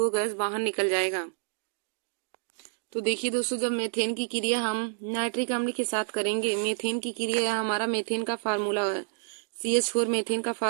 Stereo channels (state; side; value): silent; left; digital silence